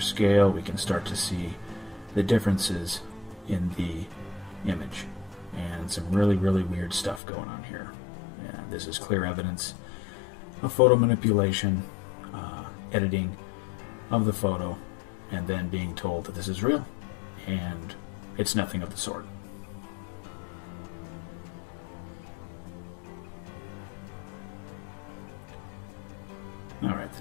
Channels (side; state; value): right; drops out; at 7.2 s